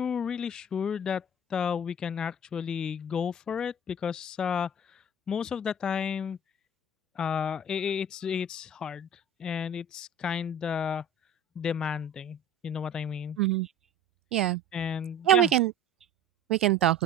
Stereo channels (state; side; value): normal; both; correlation 0.41